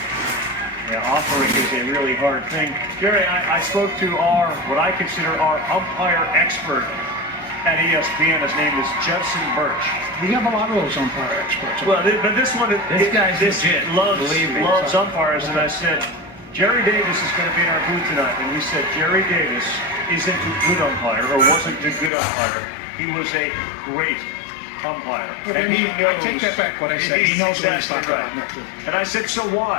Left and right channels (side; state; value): right; drops out; at 22.1 s